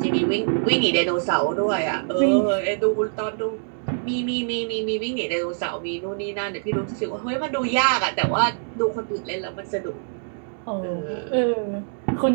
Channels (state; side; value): silent; left; digital silence